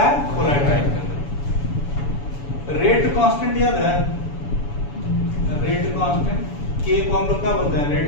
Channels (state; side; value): late; right; 7.0 ms